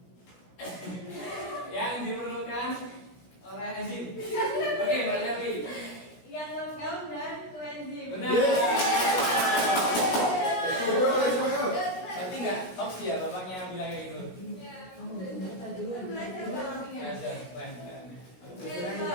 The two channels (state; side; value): late; right; 16 ms